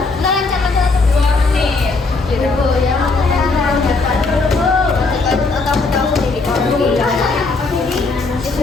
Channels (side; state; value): right; quieter; 3.8 dB